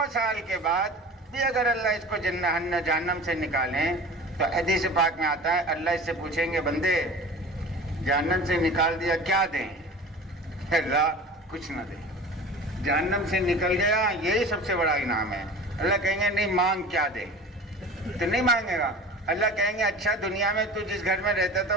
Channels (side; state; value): both; normal; correlation 0.37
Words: سال کے بعد بھی اگر اللہ اس کو جہنم سے نکالیں تو حدیث پاک میں آتا ہے اللہ اس سے پوچھیں گے بندے جہنم سے نکال دیا کیا دیں؟ اللہ کچھ نہ دیں. جہنم سے نکل گیا یہی سب سے بڑا انعام ہے. اللہ کہیں گے نہیں مانگ کیا دیں؟ تو نہیں مانگے گا. اللہ کہیں گے اچھا دنیا میں تو جس گھر میں رہتا تھا